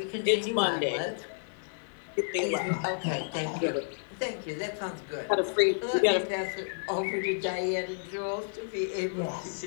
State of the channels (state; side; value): silent; right; 57 dB below the other